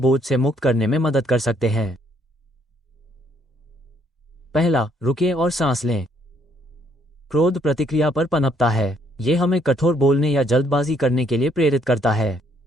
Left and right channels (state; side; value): normal; both; correlation 0.68